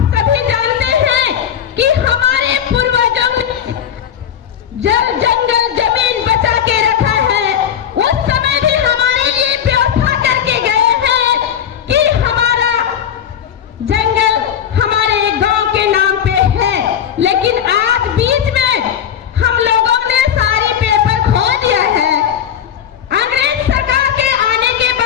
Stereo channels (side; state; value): right; quieter; 9.0 dB